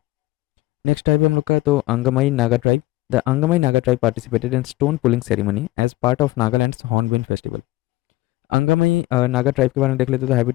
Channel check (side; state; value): right; quieter; 17.9 dB